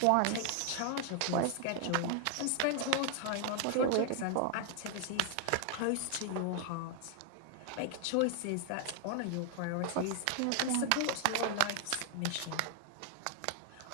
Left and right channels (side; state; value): both; different; correlation 0.00